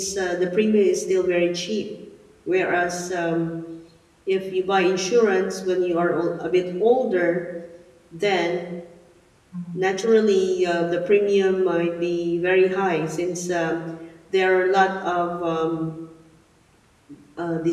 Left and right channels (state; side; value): identical; both; correlation 1.00